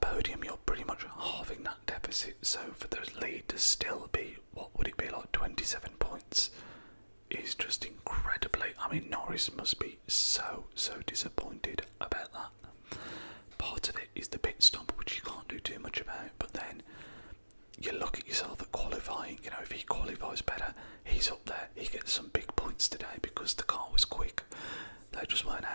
you're pretty much halving that deficit, so for the lead to still be, what would it be, like 27 points, is just incredibly... Norris must be so disappointed about that. Part of it is the pit stop, which you can't do too much about, but then you look at yourself at qualifying, if he qualifies better, he's up there, he gets some big points today because the car was quick. They just weren't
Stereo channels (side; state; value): both; inverted; correlation -1.00